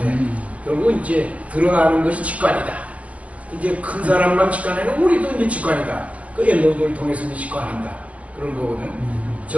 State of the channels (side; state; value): left; late; 0.066 ms